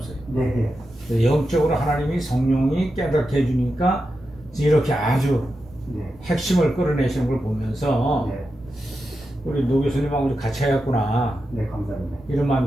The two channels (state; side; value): noise; right; rumble, 23 dB below the sound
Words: 네, 영적으로 하나님이 성령이 깨닫게 해주니까 이렇게 아주 네, 핵심을 끌어내시는 걸 보면서 네, 우리 노 교수님하고 같이 해야겠구나 네, 감사합니다. 이런